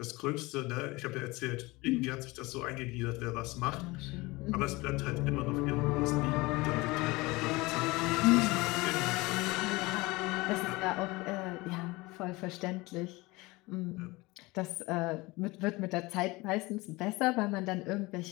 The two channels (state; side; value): quieter; right; 22.5 dB